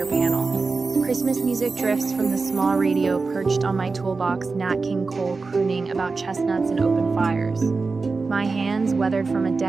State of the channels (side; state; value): left; quieter; 4.1 dB